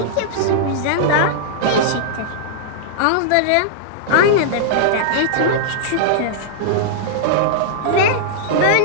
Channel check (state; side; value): different; both; correlation -0.02